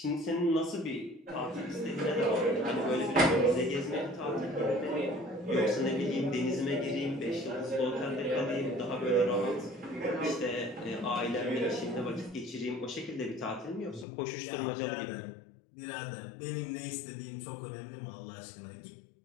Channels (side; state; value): right; drops out; at 14.1 s